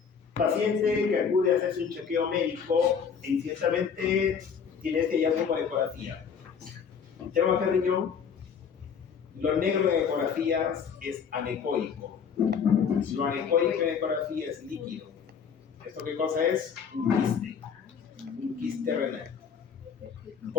Paciente que acude a hacerse un chequeo médico e incidentalmente tiene este hallazgo por ecografía. Tema de riñón, lo negro en ecografías es anecoico. Lo anecoico en ecografía es líquido. ¿Esto qué cosa es? Un quiste renal.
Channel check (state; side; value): quieter; right; 6.7 dB